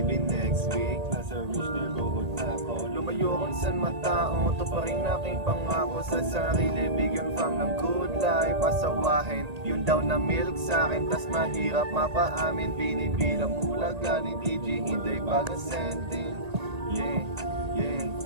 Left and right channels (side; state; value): left; late; 1.8 ms